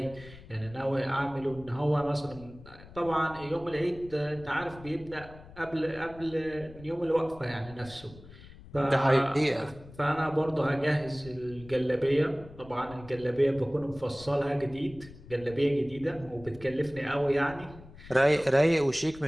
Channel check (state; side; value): noise; left; rumble, 19 dB below the sound